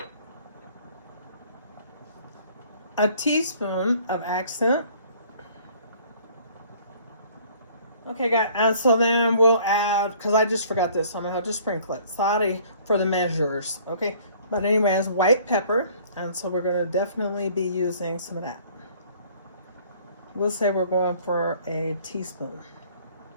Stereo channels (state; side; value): inverted; both; correlation -0.55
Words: A teaspoon of accent. Okay, guys, and so then we'll add, because I just forgot this, so I'm going to have to sprinkle it. Sorry for the measures, okay? But anyway, it's white pepper, and so we're going to definitely be using some of that. We'll say we're going for a teaspoon.